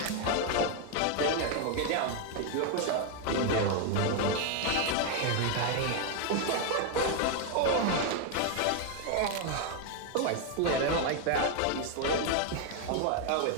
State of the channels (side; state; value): both; different; correlation 0.01